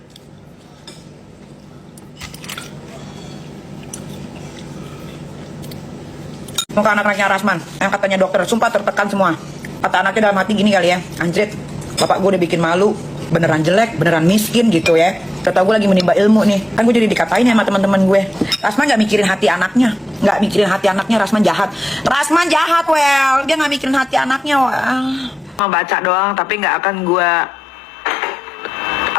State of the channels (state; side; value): normal; both; correlation 0.93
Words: Muka anak-anaknya Rasman yang katanya dokter, sumpah tertekan semua. Kata anaknya dalam hati gini kali ya, anjrit, bapak gue udah bikin malu, beneran jelek, beneran miskin gitu ya. Kata gue lagi menimba ilmu nih, kan gue jadi dikatain ya sama teman-teman gue. Rasman nggak mikirin hati anaknya, nggak mikirin hati anaknya. Rasman jahat, Rasman jahat, well, dia nggak mikirin hati anaknya. Mau baca doang, tapi nggak akan